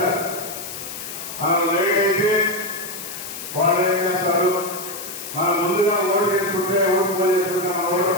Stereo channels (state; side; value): noise; left; hiss, 9 dB below the sound